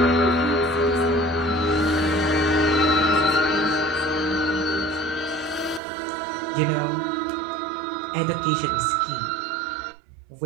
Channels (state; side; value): drops out; left; at 5.8 s